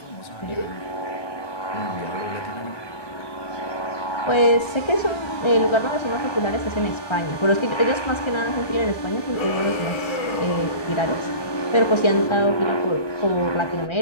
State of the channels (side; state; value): right; late; 1.3 ms